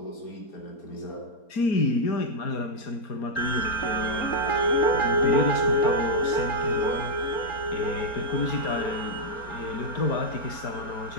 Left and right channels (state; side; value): late; right; 4.3 ms